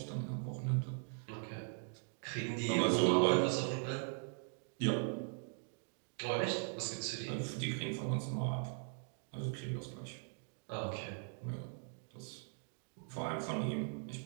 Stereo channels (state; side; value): silent; left; 51 dB below the other